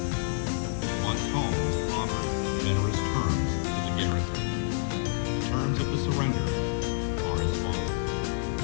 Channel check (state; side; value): silent; right; digital silence